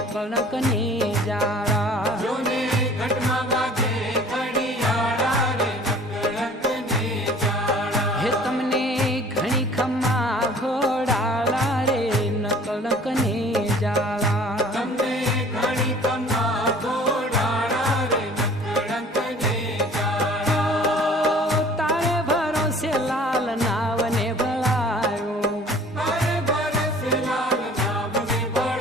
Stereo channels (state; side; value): normal; both; correlation 0.50